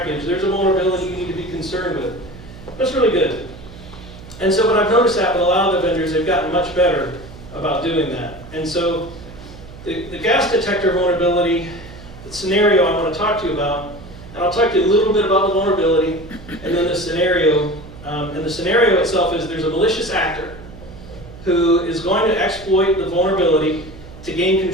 There's a vulnerability you need to be concerned with. That's really good. And so what I've noticed that with a lot of the vendors, they've gotten much better about doing that. And so the gas detector vulnerability, the scenario I want to talk to you about, and I'll talk to you a little bit about the vulnerability, and then the scenario. And the scenario itself is there's a malicious actor who is going to exploit the vulnerability to gain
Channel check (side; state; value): right; noise; hum, 17 dB below the sound